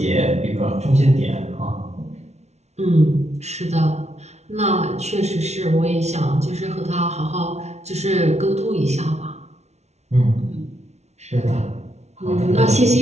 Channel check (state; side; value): late; left; 0.32 ms